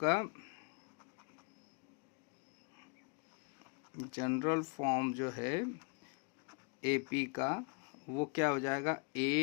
जनरल फॉर्म जो है एपी का, वो क्या हो जाएगा,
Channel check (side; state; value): right; quieter; 36.2 dB